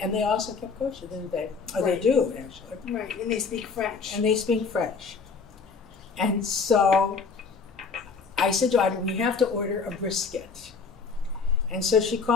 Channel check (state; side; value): quieter; right; 5.1 dB